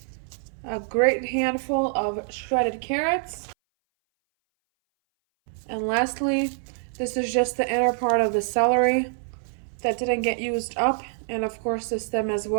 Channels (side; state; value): left; silent; 59 dB below the other